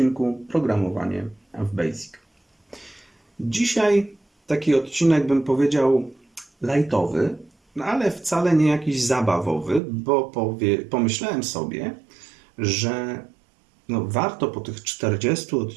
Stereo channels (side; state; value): left; drops out; at 9.8 s